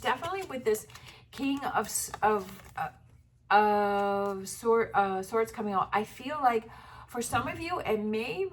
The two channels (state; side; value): identical; both; correlation 1.00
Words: definitely with this King of Swords coming out, I feel like for some of you, it may